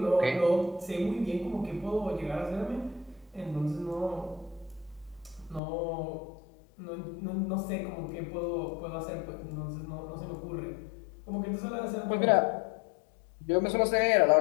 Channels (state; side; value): drops out; right; at 5.6 s